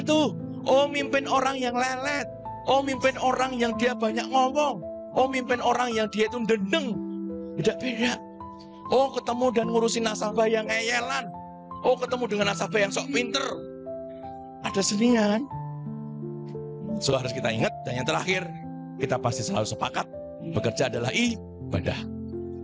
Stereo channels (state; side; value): identical; both; correlation 1.00